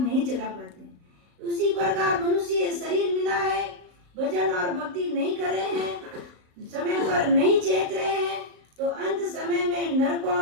जला पाते। उसी प्रकार मनुष्य शरीर मिला है, भजन और भक्ति नहीं कर रहे हैं, समय पर नहीं चेत रहे हैं, तो अंत समय में नरकों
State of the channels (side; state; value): left; late; 35 ms